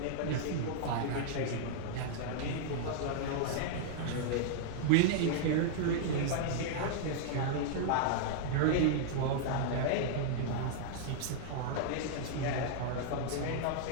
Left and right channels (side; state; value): both; different; correlation -0.01